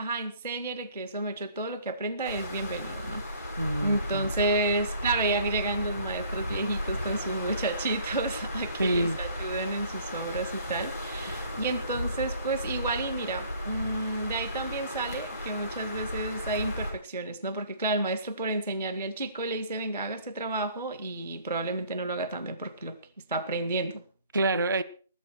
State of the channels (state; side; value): inverted; both; correlation -0.55